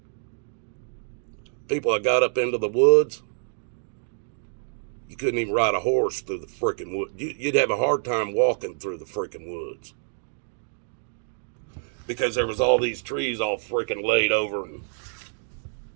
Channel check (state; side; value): silent; left; digital silence